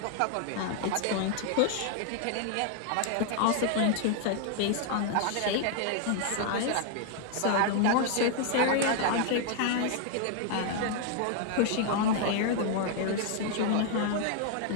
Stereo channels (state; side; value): different; both; correlation 0.00